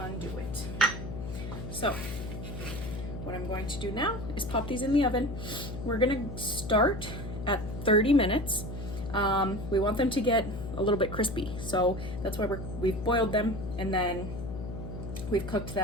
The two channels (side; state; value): left; noise; hum, 8 dB below the sound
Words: it. So what I'm going to do now is pop these in the oven. We're gonna start at 30 minutes. We want them to get a little bit crispy. So that's why we've boiled them, and then we've cooked